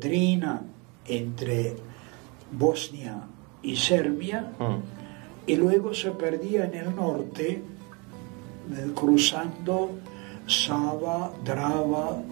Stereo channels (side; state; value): left; quieter; 30.4 dB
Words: entre Bosnia y Serbia, y luego se perdía en el norte, cruzando Sava, Drava,